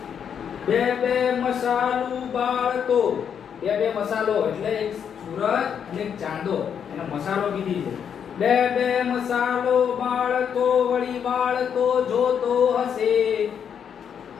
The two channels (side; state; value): right; quieter; 7.9 dB